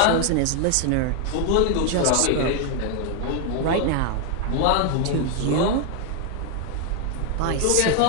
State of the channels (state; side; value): different; both; correlation 0.00